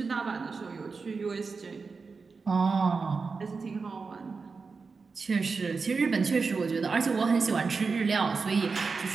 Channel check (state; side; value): quieter; left; 4.7 dB